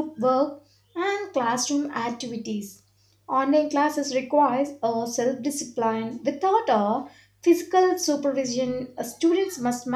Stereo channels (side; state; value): both; identical; correlation 1.00